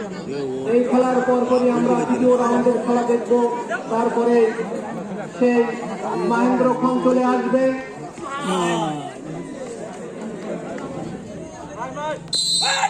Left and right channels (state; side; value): identical; both; correlation 1.00